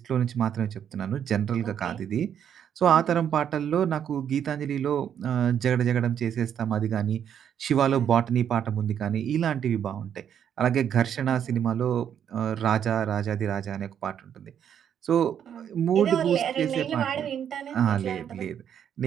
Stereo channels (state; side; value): quieter; left; 8.9 dB